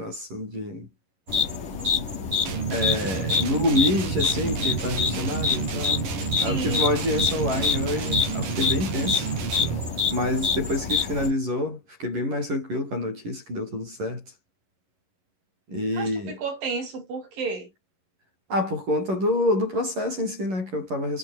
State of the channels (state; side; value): late; left; 11 ms